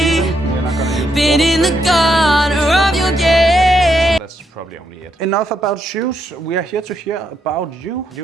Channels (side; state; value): both; normal; correlation 0.79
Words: been in the corner of your gate. That's probably only it. Enough about shoes. We are here to hear about you.